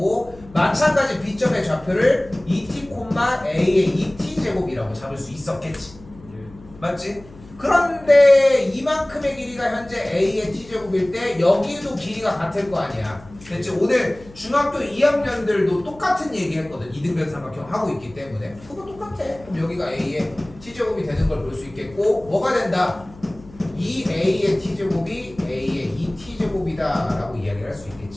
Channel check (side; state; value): left; noise; hum, 22 dB below the sound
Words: 마찬가지 B점의 좌표를 2t, A의 2t제곱이라고 잡을 수 있었겠지. 맞지? 그런데 이만큼의 길이가 현재 A의 t제곱일 때 여기도 길이가 같을 거 아니야. 됐지? 오늘 중학교 2학년들도 똑같은 얘기 했거든. 이등변 삼각형 하고 있기 때문에 그거 똑같아. 그럼 여기가 A의 t제곱이 되는 걸 볼 수 있겠고 뭐가 된다? 2A의 t제곱이 A의 2t제곱이다 라고 이야기를 할 수